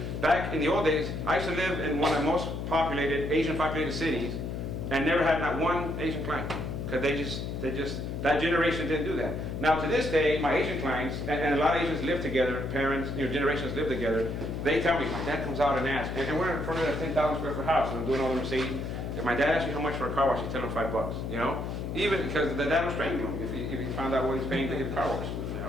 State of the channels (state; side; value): noise; left; hum, 4 dB below the sound